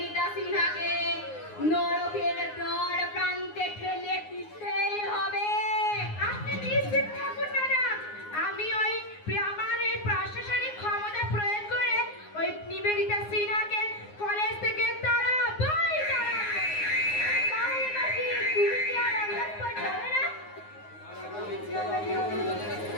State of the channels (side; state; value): right; late; 9.6 ms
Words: সিনহাকে নরকের দ্বার প্রান্তে ঠেলে দিতেই হবে। আপনি নিশ্চিত থাকুন ম্যাডাম, আমি আমার এই প্রশাসনিক ক্ষমতা প্রয়োগ করে ওই নিবেদিতা সিনহাকে কলেজ থেকে তাড়াবোই তাড়াবো। তাহলে মাসি তুমি কি আর আন্দাজ পর যাবে না?